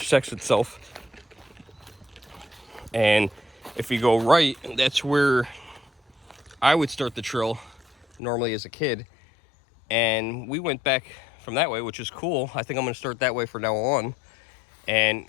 itself. And if we go right, that's where I would start the trail normally as a kid. And we went back from that way, which is cool. I think I'm going to start that way from now on. And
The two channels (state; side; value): drops out; right; at 8.2 s